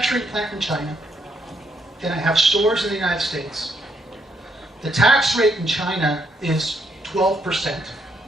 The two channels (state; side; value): normal; both; correlation 0.75